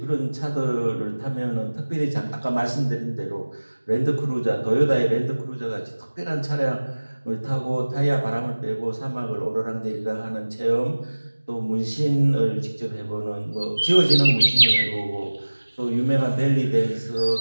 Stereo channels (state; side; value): inverted; both; correlation -1.00